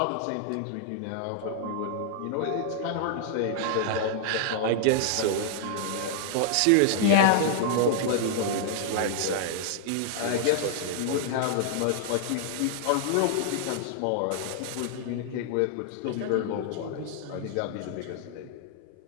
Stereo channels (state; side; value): different; both; correlation -0.01